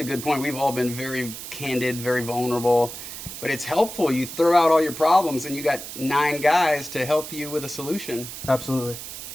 a good point. We've all been very candid, very vulnerable, but it's helpful. You throw out all your problems, and you got 9 guys to help you with a solution. Absolutely.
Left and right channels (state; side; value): noise; right; hiss, 10 dB below the sound